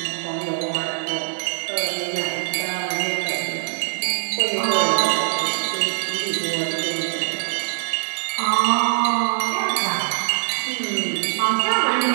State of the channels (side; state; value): left; silent; digital silence